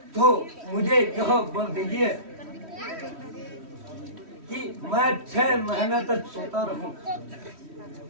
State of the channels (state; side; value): late; left; 3.1 ms